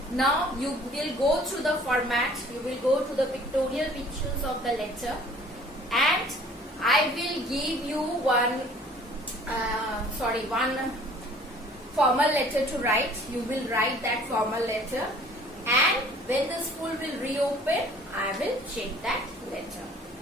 Now you will go through the format, you will go to the pictorial pictures of the letter, and I will give you one formal letter to write. You will write that formal letter, and when the school will reopen, I will check that letter.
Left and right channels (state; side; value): normal; both; correlation 0.52